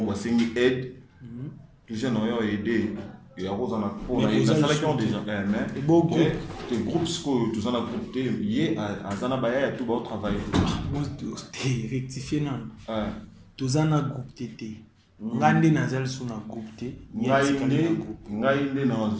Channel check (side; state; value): both; identical; correlation 1.00